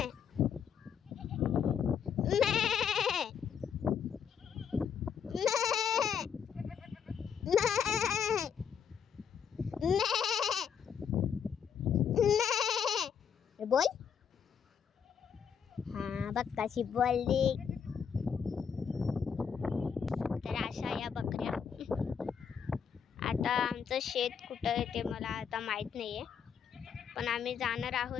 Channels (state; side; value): quieter; right; 7.4 dB